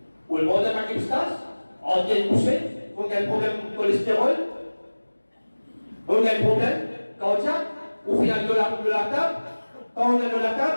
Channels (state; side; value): inverted; both; correlation -1.00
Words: Ou le monde de ma kipstas, on vient pousser, on a un problème de cholestérol, on a un problème cardiaque, ou final de la table, quand on est de la